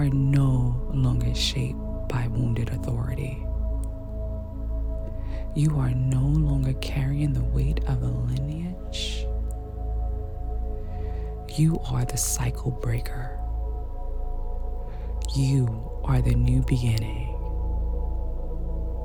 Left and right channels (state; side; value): identical; both; correlation 1.00